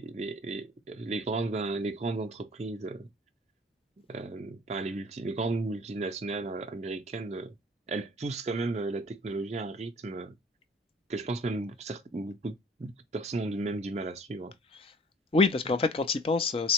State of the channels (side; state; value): both; normal; correlation 0.50